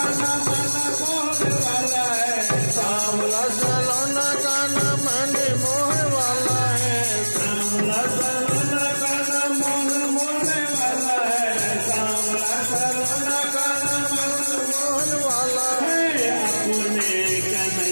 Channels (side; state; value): both; inverted; correlation -1.00